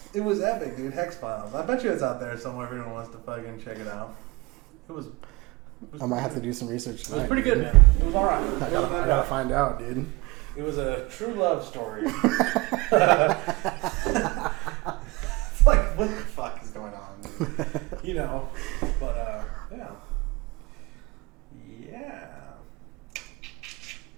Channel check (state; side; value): quieter; left; 23.7 dB